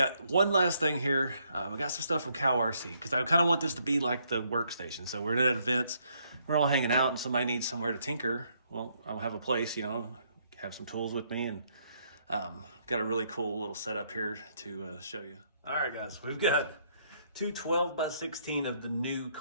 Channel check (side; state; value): both; inverted; correlation -0.71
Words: one last thing here. We got some stuff from Cow RC, because I kind of want this to be like the workstation. So we're at events, we're all hanging out, and somebody needs somewhere to tinker. Well, I'll have a place, have some tools with me, and got a really cool little setup here to show you. All right, guys, we've got 2 12x16 of the new